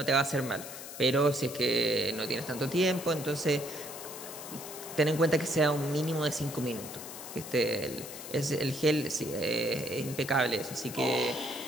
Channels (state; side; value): noise; left; hiss, 11 dB below the sound